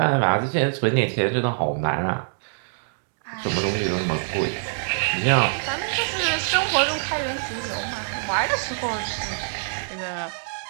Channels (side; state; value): left; silent; digital silence